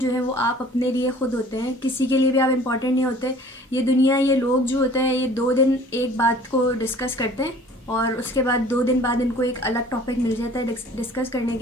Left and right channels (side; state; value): both; normal; correlation 0.50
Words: जो है वो आप अपने लिए ख़ुद होते हैं। किसी के लिए भी आप इम्पॉर्टेंट नहीं होते। ये दुनिया, ये लोग जो होते हैं, ये 2 दिन एक बात को डिस्कस करते हैं और उसके बाद 2 दिन बाद इनको एक अलग टॉपिक मिल जाता है डिस्कस करने